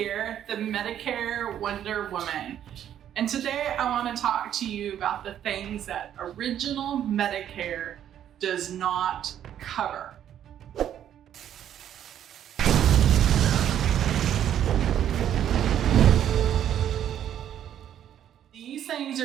the Medicare Wonder Woman. And today I want to talk to you about the things that original Medicare does not cover. These things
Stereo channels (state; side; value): quieter; left; 10.4 dB